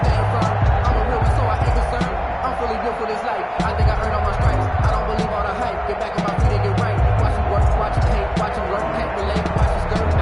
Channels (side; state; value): both; identical; correlation 1.00